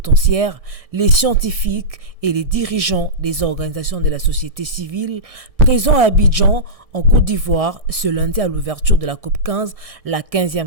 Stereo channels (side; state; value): left; late; 1.6 ms